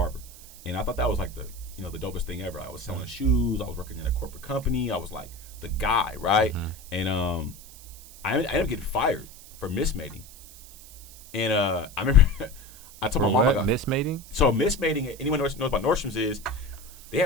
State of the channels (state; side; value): noise; right; hiss, 18 dB below the sound